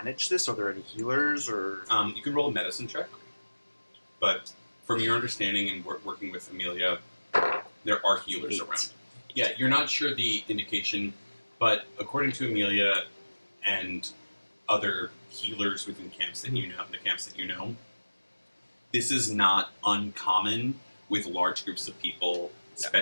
this? Are there any healers or? You can roll a medicine check, but from your understanding and working with Amelia, there are healers 8. around. Yeah, you're not sure the indication, but according to Amelia and other healers within camps that you know, the camps that you know, this is not uncommon with large groups of people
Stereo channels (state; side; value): inverted; both; correlation -1.00